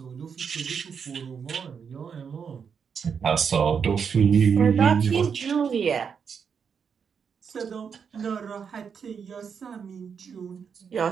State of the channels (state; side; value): quieter; left; 6.6 dB